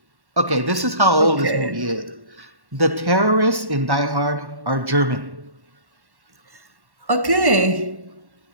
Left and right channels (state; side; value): late; left; 1.1 ms